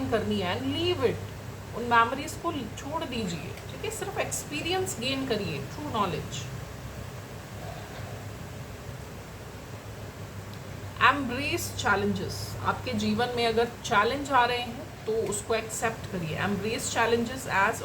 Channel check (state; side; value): identical; both; correlation 1.00